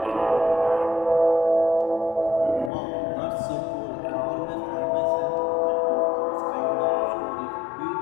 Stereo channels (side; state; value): right; drops out; at 2.7 s